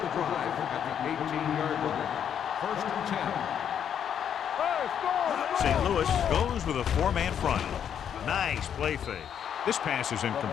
the drive at the 18-yard line. First and 10. St. Louis goes with a 4-man front. Nice play fake. This pass is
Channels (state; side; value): quieter; right; 8.7 dB